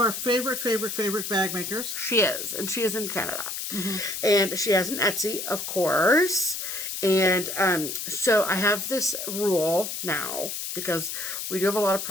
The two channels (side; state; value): left; noise; hiss, 5 dB below the sound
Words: favorite bag makers. She is. And she is in Canada. And she has an Etsy, of course. And so I have this rule now, because we do have a lot of